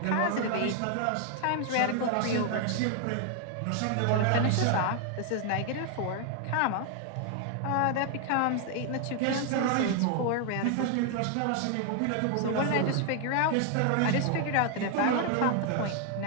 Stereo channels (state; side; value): different; both; correlation 0.00